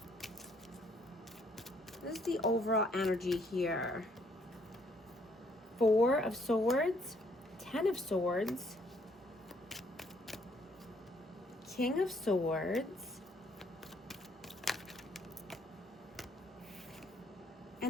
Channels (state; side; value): normal; both; correlation 0.67